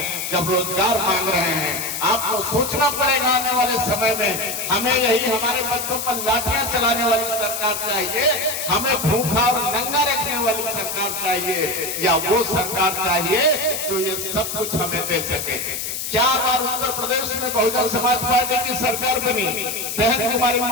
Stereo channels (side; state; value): left; noise; hiss, 4 dB below the sound